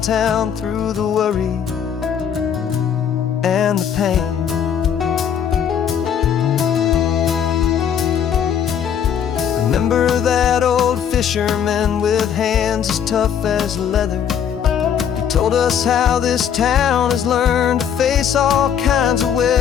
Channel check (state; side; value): quieter; right; 8.4 dB